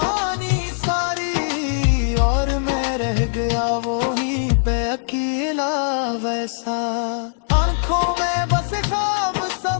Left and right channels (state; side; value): silent; right; digital silence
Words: सारी, और मैं रह गया वो ही पे अकेला वैसा। आंखों में बस ख्वाब